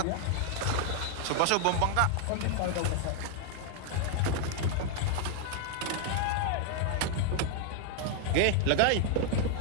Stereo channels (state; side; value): different; both; correlation 0.00